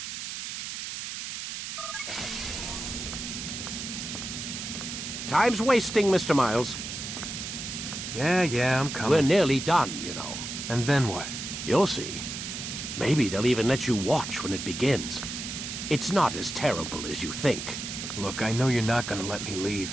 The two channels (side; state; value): right; noise; hiss, 6 dB below the sound